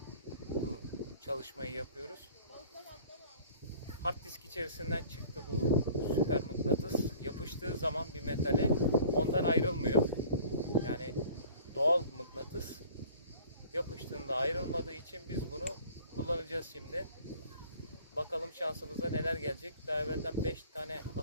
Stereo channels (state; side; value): inverted; both; correlation -0.49